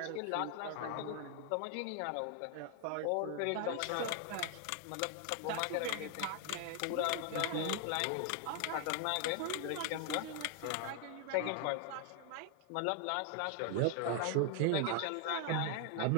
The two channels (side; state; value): both; different; correlation 0.00